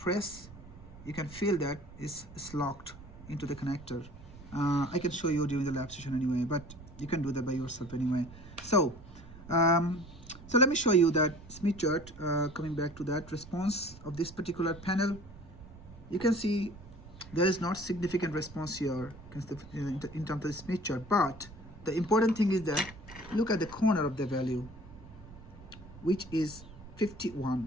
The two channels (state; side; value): noise; right; rumble, 17 dB below the sound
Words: you can feel that it's locked into the connector. I can show you during the lab session anyway, but you can do that by yourself anyway. So so let me show you that Smith chart. Coming back to that response of this particular panel, you can see there is not significant response here in terms of the Smith chart, but the important thing is that look at the corner of the value, which is